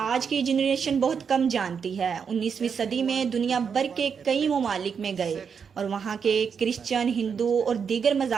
की जनरेशन बहुत कम जानती है, 19वीं सदी में दुनिया भर के कई ममालिक में गए और वहाँ के क्रिश्चियन, हिंदू और दीगर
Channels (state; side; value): quieter; left; 6.5 dB